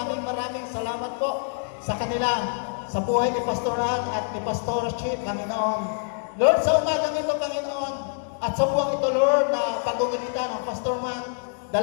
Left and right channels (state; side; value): silent; right; digital silence